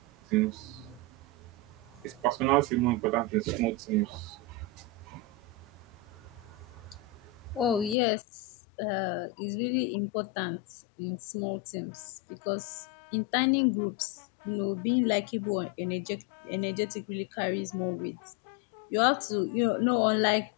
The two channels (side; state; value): right; drops out; at 8.0 s